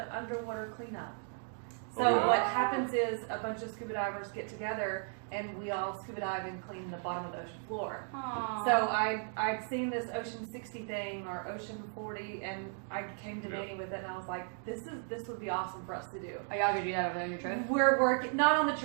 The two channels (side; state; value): left; silent; 54 dB below the other